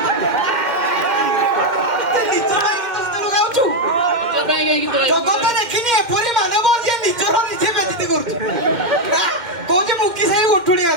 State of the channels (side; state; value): left; late; 2.1 ms